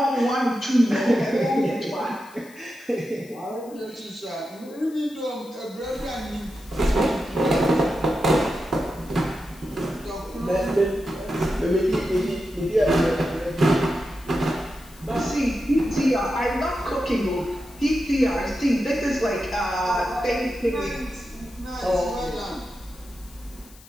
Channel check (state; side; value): noise; left; hiss, 24 dB below the sound